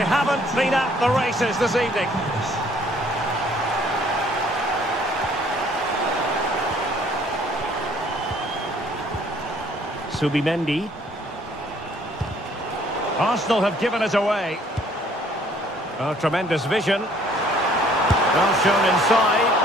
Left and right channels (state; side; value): normal; both; correlation 0.59